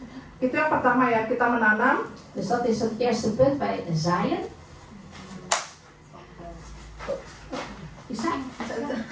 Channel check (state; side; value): identical; both; correlation 1.00